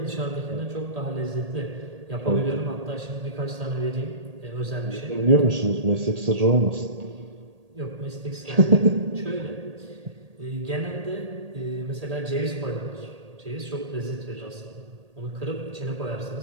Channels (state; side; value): late; left; 1.8 ms